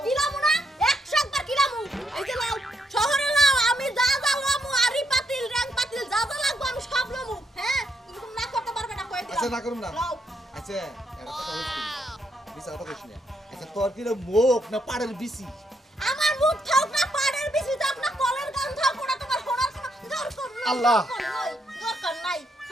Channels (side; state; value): both; normal; correlation 0.77